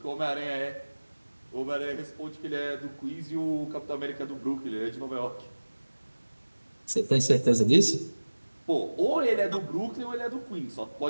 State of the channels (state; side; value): inverted; both; correlation -1.00